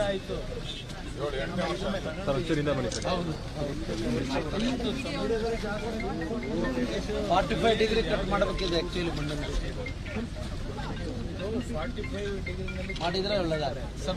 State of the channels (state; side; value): identical; both; correlation 1.00